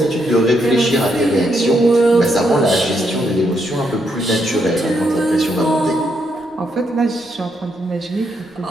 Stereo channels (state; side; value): normal; both; correlation 0.78